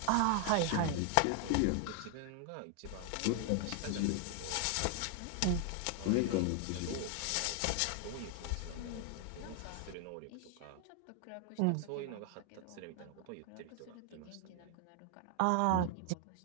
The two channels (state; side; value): different; both; correlation 0.00